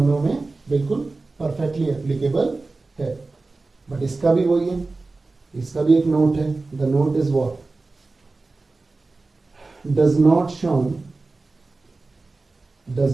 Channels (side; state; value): left; quieter; 3.5 dB